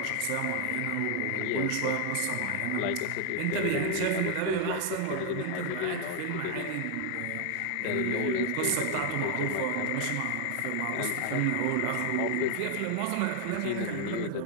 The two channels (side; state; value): both; different; correlation 0.00